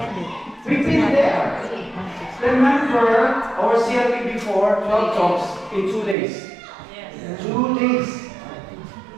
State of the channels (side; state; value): left; drops out; at 6.2 s